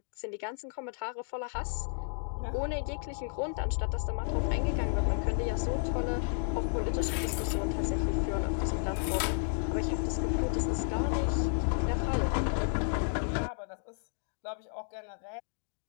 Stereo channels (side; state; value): right; silent; digital silence